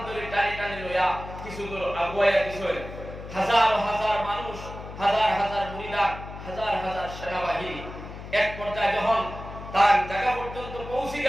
ধরে টানি টানি লইয়া কিছু দূর আগুয়াইয়া দিছে। হাজার হাজার মানুষ, হাজার হাজার মুরিদান, হাজার হাজার সেনাবাহিনী। এক পর্যায়ে যখন তার জায়গা পর্যন্ত পৌঁছে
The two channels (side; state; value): left; noise; hum, 12 dB below the sound